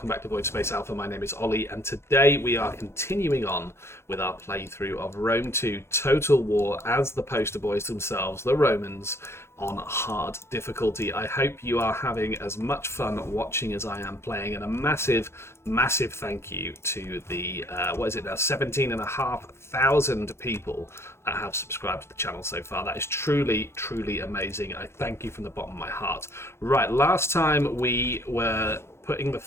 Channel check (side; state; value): right; late; 0.12 ms